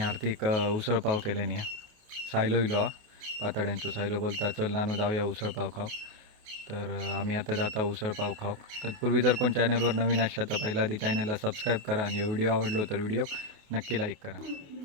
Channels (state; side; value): late; left; 28 ms